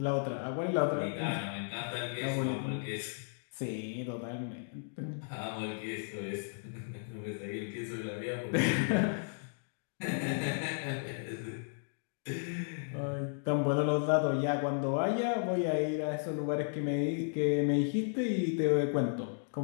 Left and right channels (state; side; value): silent; right; digital silence